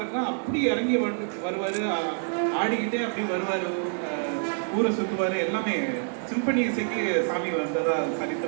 அப்படி இறங்கி வருவாரு, ஆடிக்கிட்டே அப்படி வருவாரு, ஊரை சுற்றுவாரு. எல்லாமே சிம்பனி இசைக்கு சாமி வந்ததா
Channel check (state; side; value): silent; left; 60 dB below the other